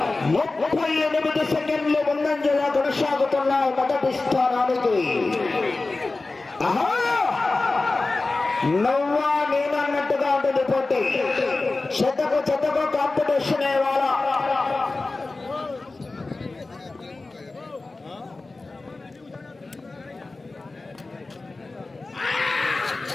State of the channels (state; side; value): quieter; right; 3.4 dB